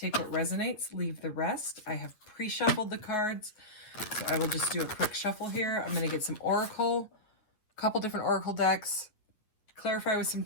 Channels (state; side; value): late; right; 9.2 ms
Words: what resonates, leave the rest. I have pre-shuffled the cards. So I will just do a quick shuffle here. I'm going to get some oracle, a couple different oracle decks, clarify with some